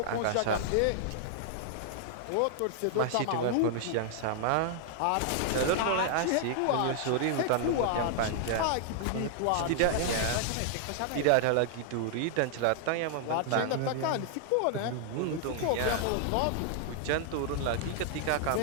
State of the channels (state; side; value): different; both; correlation -0.01